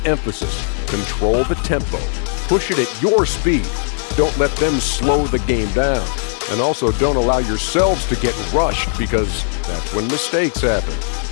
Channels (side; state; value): right; silent; 61 dB below the other